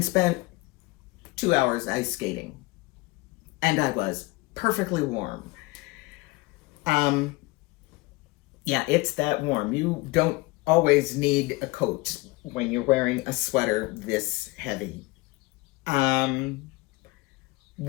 spent 2 hours ice skating. And I was perfectly warm. Yeah, it's that warm. You don't always need a coat when you're wearing a sweater this heavy.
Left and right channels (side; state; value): right; quieter; 22.2 dB